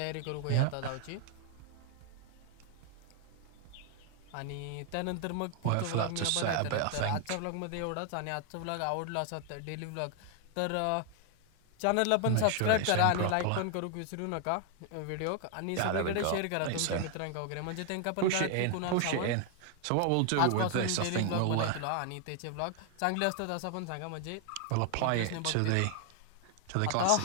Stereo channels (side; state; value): both; different; correlation 0.00